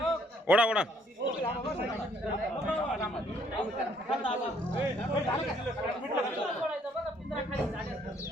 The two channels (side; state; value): both; normal; correlation 0.66